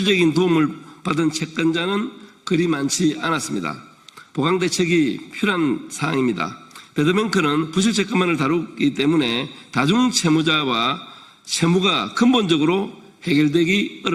도움을 받은 채권자는 그리 많지 않았습니다. 보강 대책이 필요한 사항입니다. 배드뱅크는 부실채권만을 다루기 때문에 다중채무자와 채무가 근본적으로 해결되기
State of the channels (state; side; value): identical; both; correlation 1.00